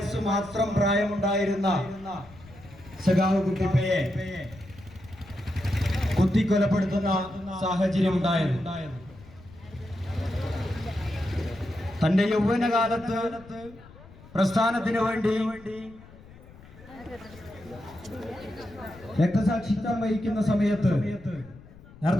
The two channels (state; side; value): noise; left; rumble, 21 dB below the sound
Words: മാത്രം പ്രായമുണ്ടായിരുന്ന സഖാവ് കുട്ടിപ്പയെ കുത്തിക്കൊലപ്പെടുത്തുന്ന സാഹചര്യം ഉണ്ടായത്. തന്റെ യൗവനകാലത്ത് പ്രസ്ഥാനത്തിനു വേണ്ടി രക്തസാക്ഷിത്വം വഹിക്കുന്ന സമയത്ത്